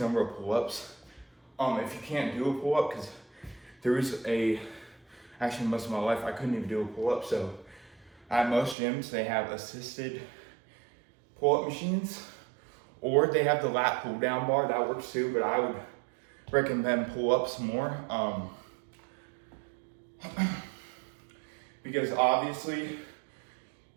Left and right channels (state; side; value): drops out; left; at 8.8 s